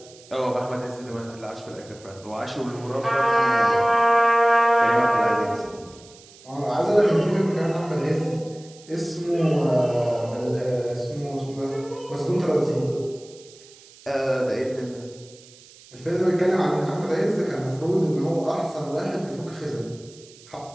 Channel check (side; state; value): right; noise; hiss, 23 dB below the sound